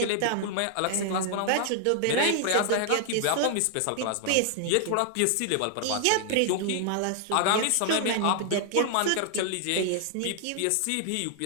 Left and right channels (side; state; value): both; different; correlation 0.00